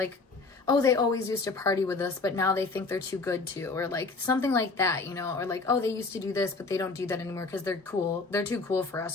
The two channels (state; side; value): quieter; right; 3.9 dB